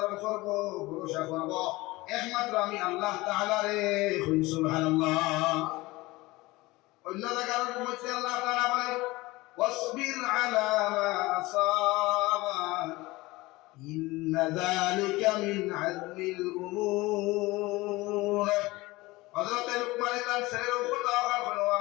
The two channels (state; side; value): quieter; right; 20.8 dB